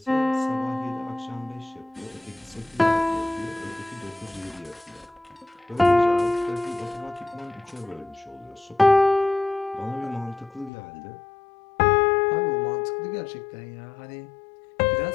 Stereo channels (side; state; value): right; drops out; at 10.7 s